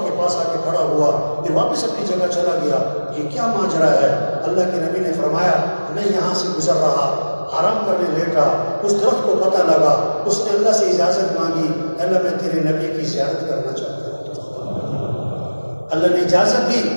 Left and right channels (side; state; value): both; inverted; correlation -1.00